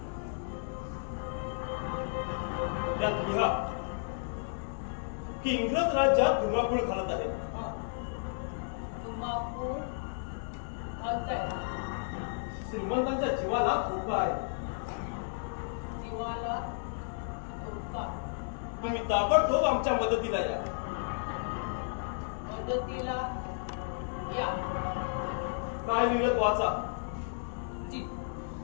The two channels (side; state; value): right; silent; digital silence